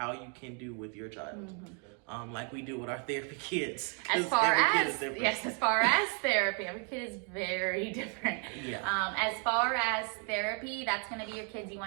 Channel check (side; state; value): left; quieter; 39.2 dB